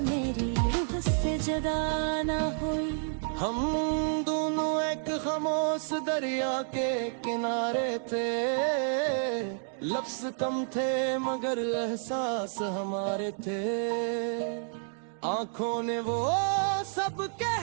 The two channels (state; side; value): silent; left; digital silence